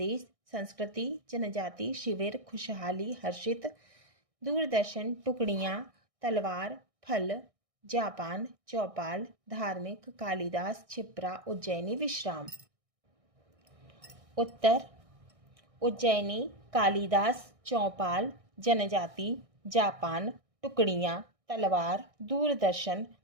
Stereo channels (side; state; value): left; late; 1.6 ms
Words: संस्कृति, जनजाति, शिविर, खुशहाली, हर्षित, दूरदर्शन, टुकड़ियाँ, तलवार, फल, जापान, चौपाल, धार्मिक, कालिदास, क्षिप्रा, उज्जैनी, विश्राम। उत्तर उज्जैनी, कालिदास, चौपाल, जनजाति, जापान, टुकड़ियाँ, तलवार, दूरदर्शन,